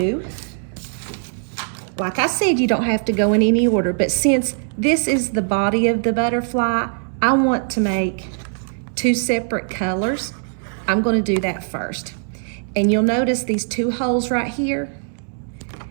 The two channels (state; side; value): silent; left; digital silence